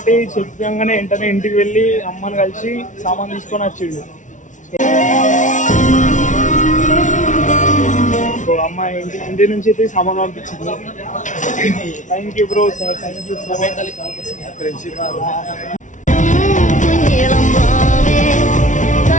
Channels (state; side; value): late; right; 0.37 ms